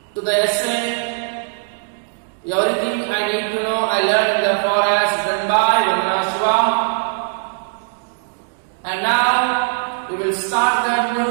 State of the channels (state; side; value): silent; left; digital silence